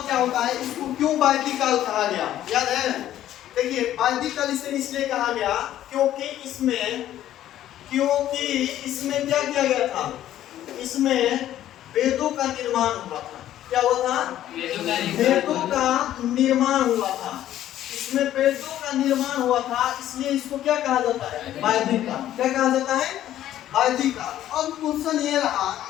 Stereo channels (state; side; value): quieter; right; 12.4 dB